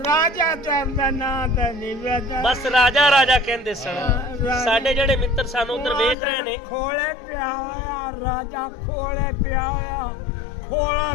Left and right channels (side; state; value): right; drops out; at 6.2 s